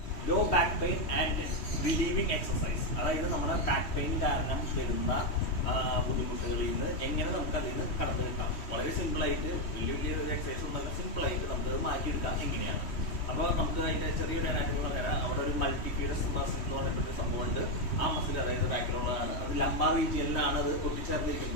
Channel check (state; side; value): late; right; 3.1 ms